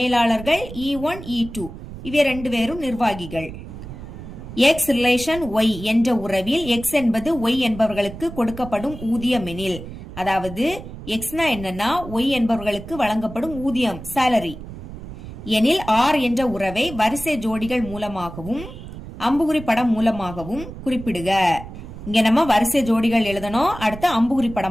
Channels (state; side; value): noise; right; rumble, 12 dB below the sound